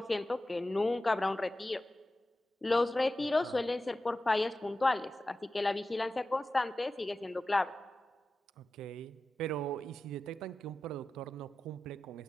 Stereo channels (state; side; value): normal; both; correlation 0.94